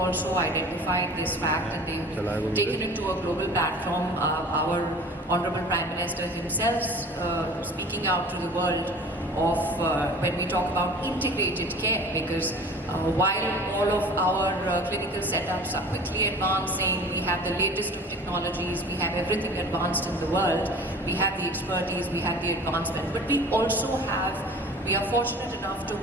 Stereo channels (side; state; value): both; normal; correlation 0.43